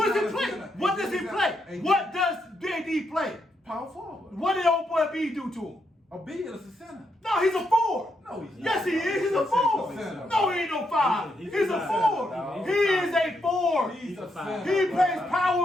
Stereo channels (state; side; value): normal; both; correlation 0.80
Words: does he not a play? center. What does he AD play? is What does AD play? Power forward. What did old boy B do to him? A Beal is a center. No, he's a 4. No, he's not. Yes, he is. He's a 4. center. No, he ain't no 5. He's He's a a center, 4. dog. He is a 4. He's a five. center. He plays